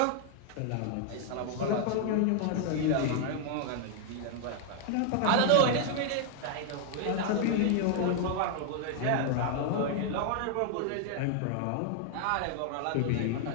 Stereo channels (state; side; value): different; both; correlation 0.00